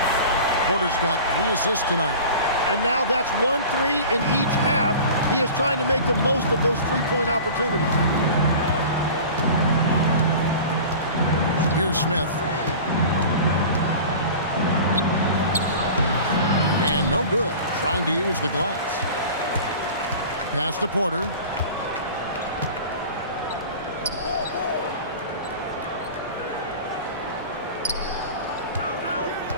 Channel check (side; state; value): both; inverted; correlation -0.38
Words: Porter's got 3 assists tonight. And now that's 1-3 in each half. He is trying to make the most of those three-point opportunities. Here's Smith. And no good, trying to use the glass. Pass to Porter.